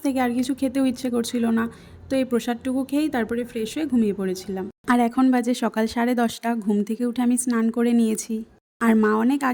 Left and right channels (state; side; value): identical; both; correlation 1.00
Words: থেকে আর কিছু খেতেও ইচ্ছে করছিল না। তো এই প্রসাদটুকু খেয়েই তারপরে ফ্রেশ হয়ে ঘুমিয়ে পড়েছিলাম। আর এখন বাজে সকাল 10:30। ঘুম থেকে উঠে আমি স্নান করে নিয়েছি। আর মা অনেক